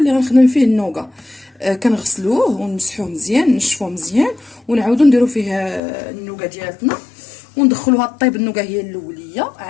غنخدم فيه النوغا. كنغسلوه ونمسحوه مزيان، نشفوه مزيان، ونعاودو نديرو فيه النوغا ديالتنا وندخلوها طيب. النوغا هي الاوليه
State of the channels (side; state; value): right; drops out; at 5.8 s